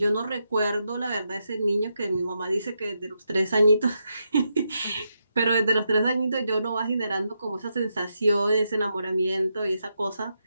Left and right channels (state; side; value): inverted; both; correlation -0.83